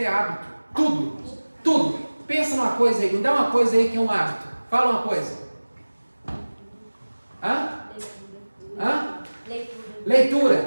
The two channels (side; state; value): both; inverted; correlation -1.00